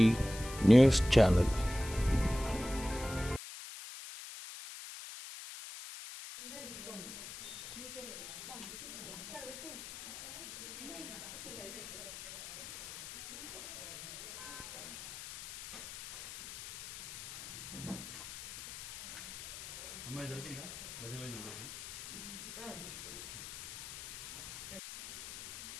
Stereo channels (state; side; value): noise; left; hiss, 11 dB below the sound